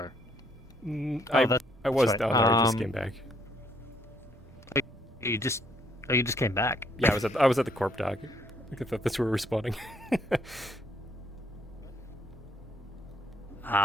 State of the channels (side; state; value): both; normal; correlation 0.68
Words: I was right. down there. I just came back. You just came back. Yeah, I was at the corp dock. I thought that's where we were spawning.